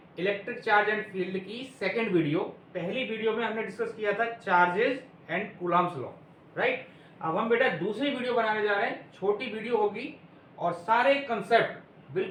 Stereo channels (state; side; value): identical; both; correlation 1.00